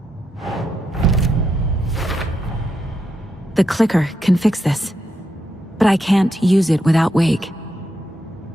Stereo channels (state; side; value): normal; both; correlation 0.83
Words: The clicker can fix this. But I can't use it without Wake.